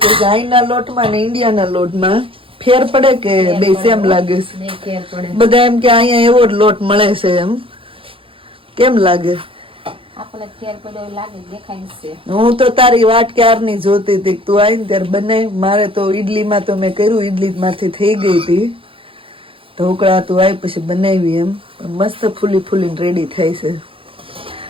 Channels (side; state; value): left; late; 0.26 ms